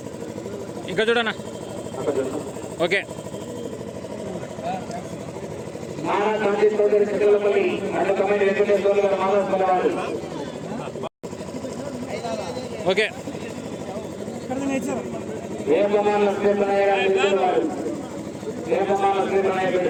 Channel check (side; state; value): both; identical; correlation 1.00